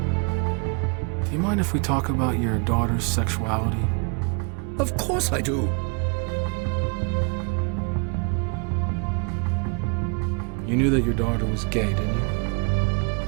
Do you mind if we talk about your daughter's sexuality? Of course I do. You knew that your daughter was gay, didn't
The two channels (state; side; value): quieter; left; 34.6 dB